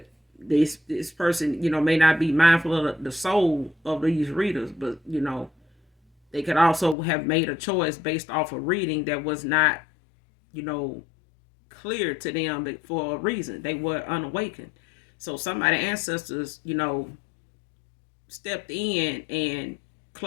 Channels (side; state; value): right; drops out; at 7.0 s